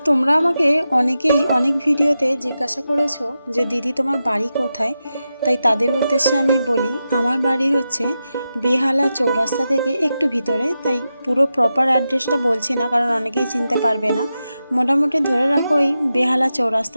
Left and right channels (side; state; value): both; inverted; correlation -0.90